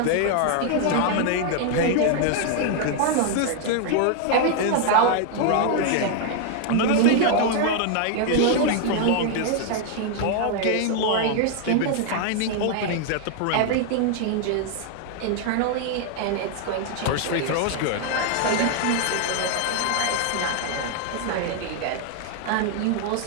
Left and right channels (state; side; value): different; both; correlation 0.00